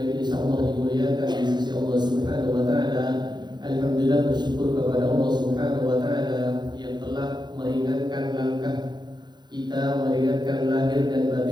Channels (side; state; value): left; late; 0.21 ms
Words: insyaallah dimuliakan di sisi Allah Subhanahu wa taala. Alhamdulillah, bersyukur kepada Allah Subhanahu wa taala yang telah meringankan langkah kita, meringankan lahir dan